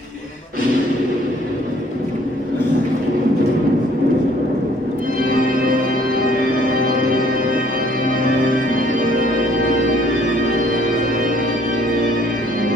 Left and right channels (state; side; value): normal; both; correlation 0.60